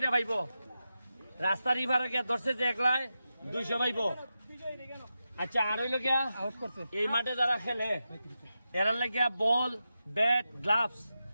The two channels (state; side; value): inverted; both; correlation -0.90